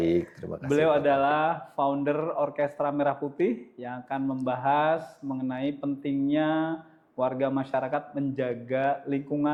terima kasih. Beliau adalah founder Orkestra Merah Putih yang akan membahas mengenai pentingnya warga masyarakat menjaga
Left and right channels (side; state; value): both; identical; correlation 1.00